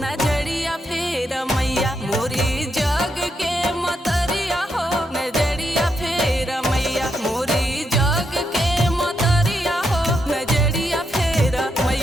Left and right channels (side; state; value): both; normal; correlation 0.81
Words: नजरिया फेर मैया मोरी जग के मतरिया हो नजरिया फेर मैया मोरी जग के मतरिया हो नजरिया फेर